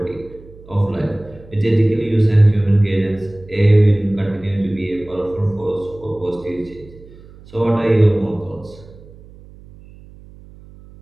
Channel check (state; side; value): noise; right; hum, 21 dB below the sound